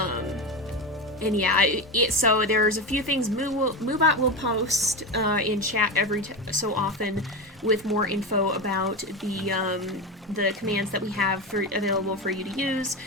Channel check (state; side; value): normal; both; correlation 0.20